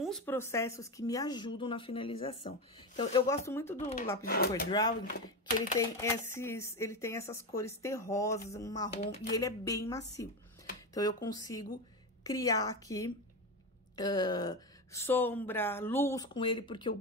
processos que me ajudam na finalização. Então, eu gosto muito do lápis de cor Drawing, que ele tem essas cores terrosas, um marrom, e ele é bem macio. Então, eu consigo criar aqui sombra, luz com ele, porque o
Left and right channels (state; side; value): normal; both; correlation 0.17